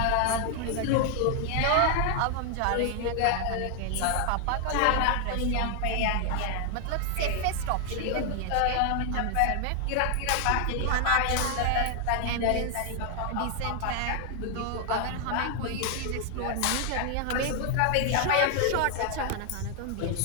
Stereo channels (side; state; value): both; different; correlation 0.00